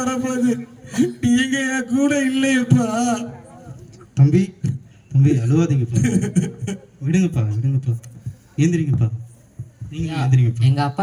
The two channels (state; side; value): identical; both; correlation 1.00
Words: நீங்க என் கூட இல்லையப்பா. தம்பி தம்பி அழுவாதீங்கப்பா. விடுங்கப்பா விடுங்கப்பா. ஏந்திரிங்கப்பா. நீங்க ஏந்திரிங்கப்பா. எங்க அப்பா